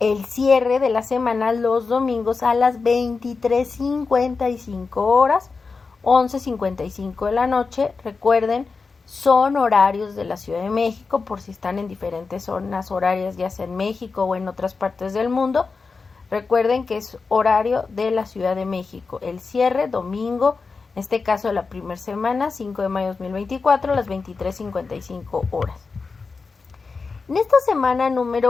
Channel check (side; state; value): right; quieter; 4.5 dB